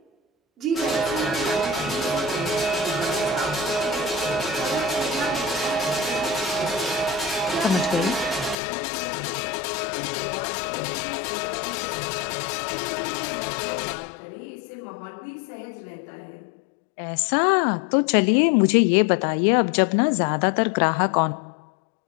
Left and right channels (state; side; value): drops out; right; at 8.6 s